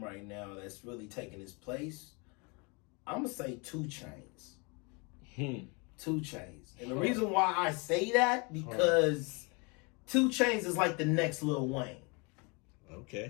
right now, that's really taking his place, I'm gonna say 2 Chainz. 2 Chainz. And the reason why I say that, because 2 Chainz is like the next Lil Wayne.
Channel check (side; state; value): right; quieter; 30.6 dB